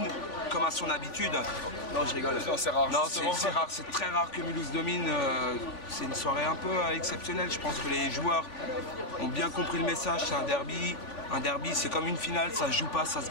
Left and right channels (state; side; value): late; right; 3.5 ms